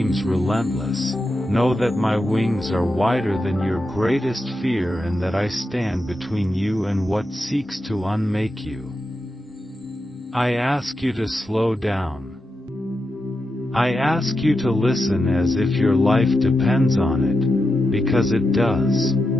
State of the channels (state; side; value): normal; both; correlation 0.88